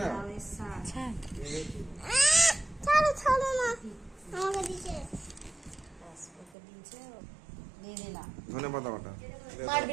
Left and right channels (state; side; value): drops out; left; at 6.6 s